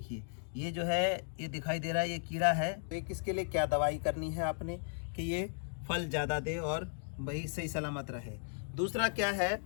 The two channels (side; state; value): right; silent; digital silence